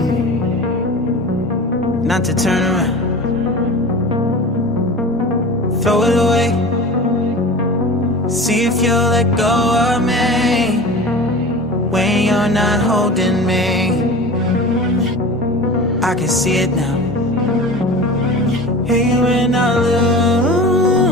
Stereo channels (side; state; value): both; normal; correlation 0.35